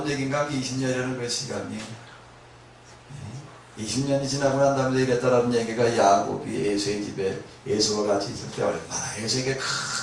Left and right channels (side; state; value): both; identical; correlation 1.00